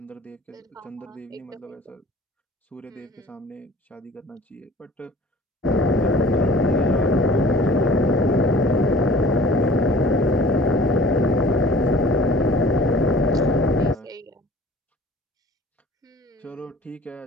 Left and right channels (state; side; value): normal; both; correlation 0.48